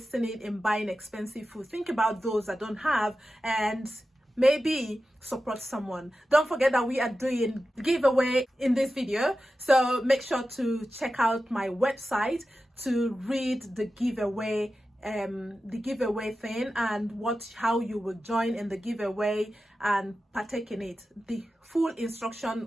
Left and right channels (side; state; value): both; normal; correlation 0.93